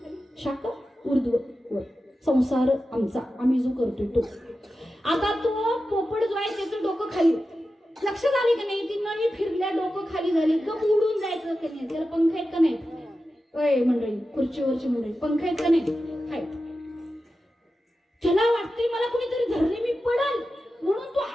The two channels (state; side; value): normal; both; correlation 0.92